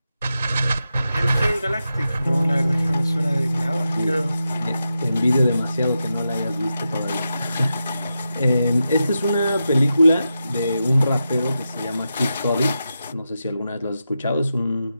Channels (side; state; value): both; inverted; correlation -0.89